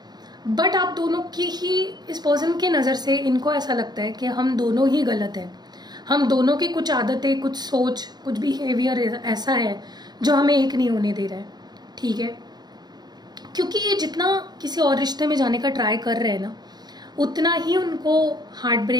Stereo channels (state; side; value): late; left; 0.20 ms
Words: बट आप दोनों की ही इस पर्सन की नज़र से इनको ऐसा लगता है कि हम दोनों ही गलत हैं, हम दोनों की कुछ आदतें, कुछ सोच, कुछ बिहेवियर ऐसा है जो हमें एक नहीं होने दे रहा है, ठीक है। क्योंकि ये जितना किसी और रिश्ते में जाने का ट्राई कर रहे हैं ना, उतना ही उनको हार्ट